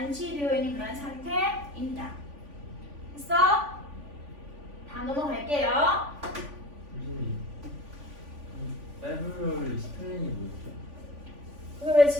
있는 그런 상태입니다. 됐어? 다음 넘어갈게요. 교수님, 페브루아리 스펠링이 뭐였죠? 그걸 왜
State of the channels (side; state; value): left; late; 3.5 ms